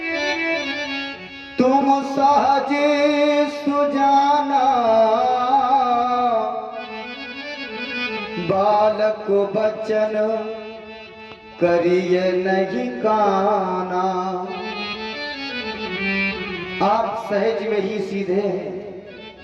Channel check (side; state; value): both; identical; correlation 1.00